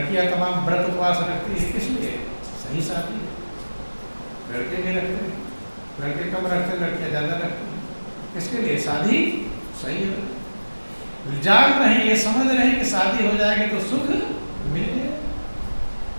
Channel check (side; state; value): both; inverted; correlation -1.00